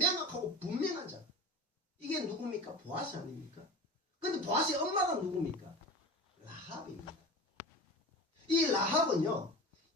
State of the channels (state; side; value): normal; both; correlation 0.32